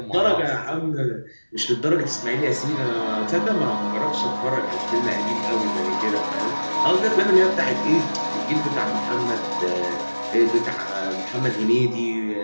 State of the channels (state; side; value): inverted; both; correlation -1.00